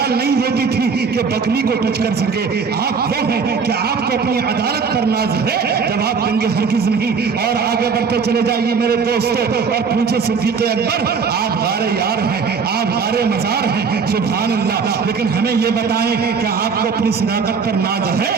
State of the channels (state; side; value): quieter; left; 5.6 dB